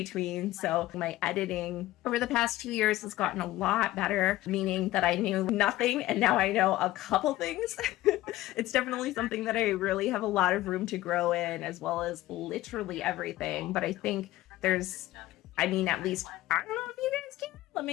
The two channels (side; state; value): right; quieter; 16.4 dB